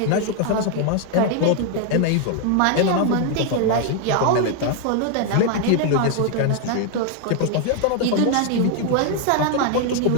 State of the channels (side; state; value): both; different; correlation 0.00